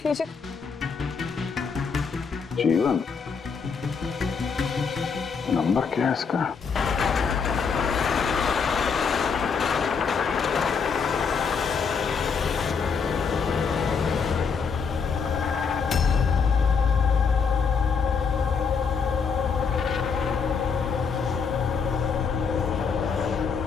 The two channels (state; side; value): quieter; right; 5.7 dB